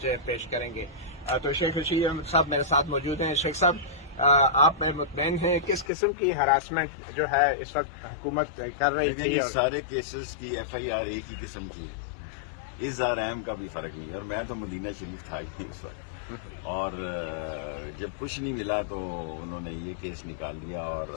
پیش کریں گے۔ تو شیخ رشید احمد صاحب میرے ساتھ موجود ہیں۔ شیخ صاحب، آپ مطمئن ہیں کس قسم کی ہراسمنٹ جو ہے اس وقت حکومت کر رہی تھی؟ یہ سارے کیسز کی ایف آئی آر ایک ہی قسم کی ہے، اظہار اہم کا بھی فرق نہیں ہے، اور میں تو مدینہ شریف تھا ہی نہیں اس وقت، اور جب کچھ نہیں ملا تو انہوں نے یہ کیس نکال لیا، اور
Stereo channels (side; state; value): right; drops out; at 5.9 s